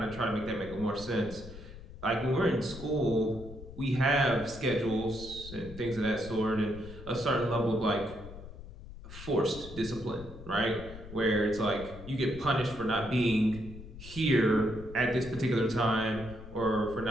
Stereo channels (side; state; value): left; noise; rumble, 14 dB below the sound